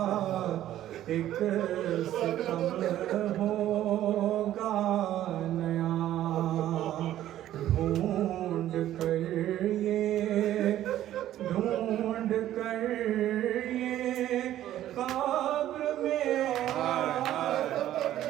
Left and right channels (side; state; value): left; quieter; 12.8 dB